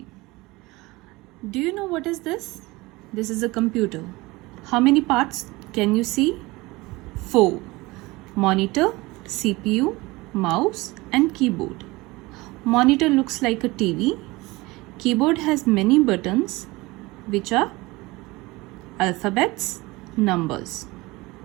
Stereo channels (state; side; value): quieter; left; 21.9 dB